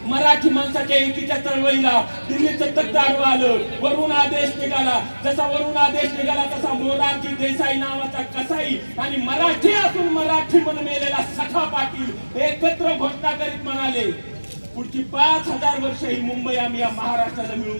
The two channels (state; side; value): inverted; both; correlation -1.00